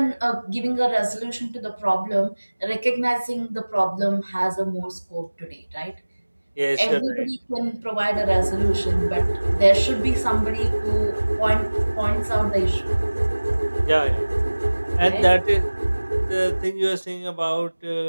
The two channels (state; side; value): inverted; both; correlation -1.00